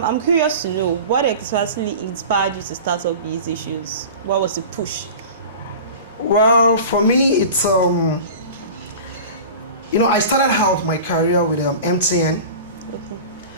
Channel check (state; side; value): inverted; both; correlation -0.36